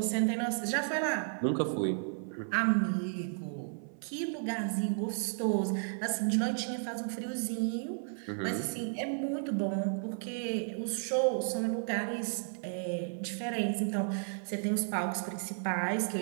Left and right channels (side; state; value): left; silent; 56 dB below the other